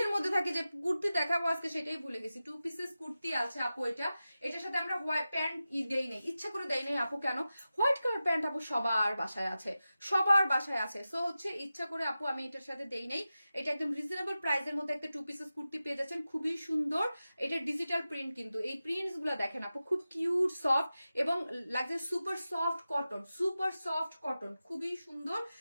মধ্যে থাকে যে কুর্তি দেখাবো আজকে, সেটাই ভুলে গেছি। টু পিসেস কুর্তি আছে আপু, এটার সাথে আমরা হোয়াইট প্যান্ট দেই নাই, ইচ্ছা করে দেই নাই আপু। কেন? হোয়াইট কালার প্যান্ট আপু সবার বাসায় আছে, সো হচ্ছে ইচ্ছা করে আপু আমি এটার সাথে দেই নাই। এটা একদম রিজনেবল প্রাইসের মধ্যে একটা টু পিসেস কুর্তি পেয়ে যাচ্ছেন, খুবই সুন্দর। এটা ডিজিটাল প্রিন্ট, কিন্তু এই প্রিন্টস গুলো দেখেন আপু খুব কিউট সফট এবং লাগছে সুপার সফট কটন, খুবই সুন্দর।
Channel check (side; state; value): both; inverted; correlation -0.94